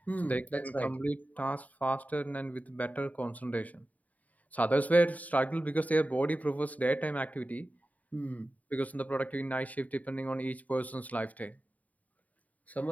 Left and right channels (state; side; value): late; right; 0.073 ms